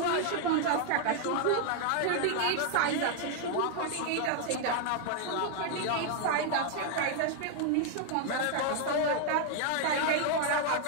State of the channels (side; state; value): both; different; correlation 0.00